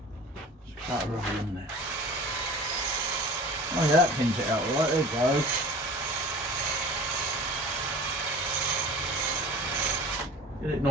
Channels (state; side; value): normal; both; correlation 0.41